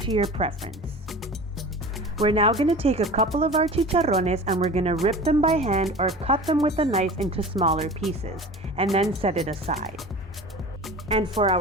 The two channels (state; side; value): normal; both; correlation 0.36